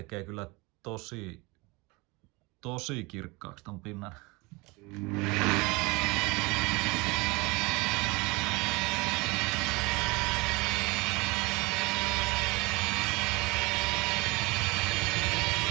kyllä tosi kirkkaaksi ton pinnan.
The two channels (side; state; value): left; quieter; 25.5 dB